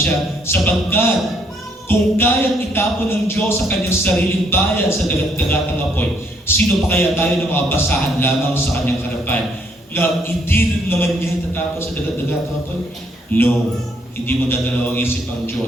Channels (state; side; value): normal; both; correlation 0.69